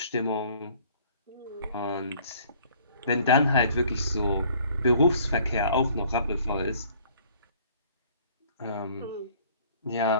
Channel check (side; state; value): both; inverted; correlation -0.56